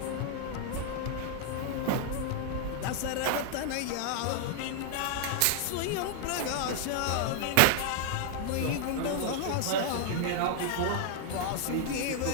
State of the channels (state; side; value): different; both; correlation 0.00